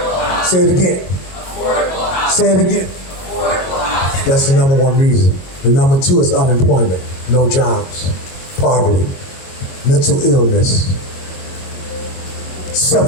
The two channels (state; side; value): late; right; 22 ms